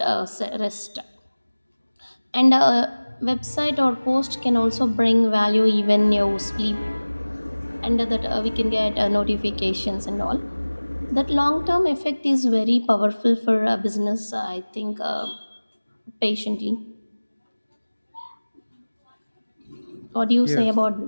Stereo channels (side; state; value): both; inverted; correlation -1.00